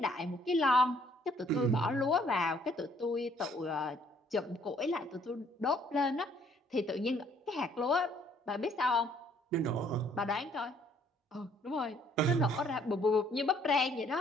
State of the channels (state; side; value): normal; both; correlation 0.63